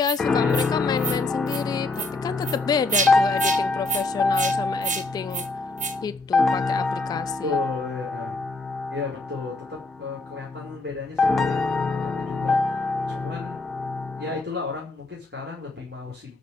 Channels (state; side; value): quieter; right; 3.2 dB